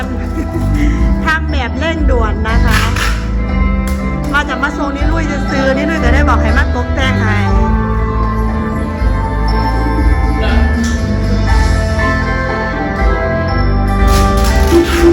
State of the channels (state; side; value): identical; both; correlation 1.00